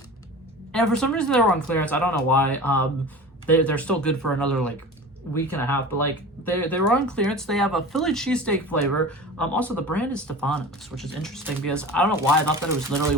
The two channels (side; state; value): both; normal; correlation 0.35